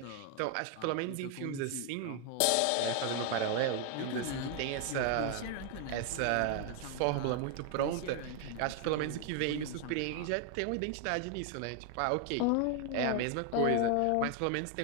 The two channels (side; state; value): both; different; correlation 0.01